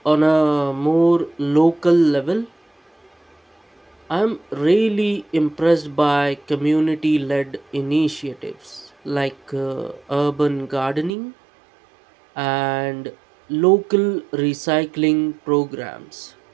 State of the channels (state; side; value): drops out; left; at 11.1 s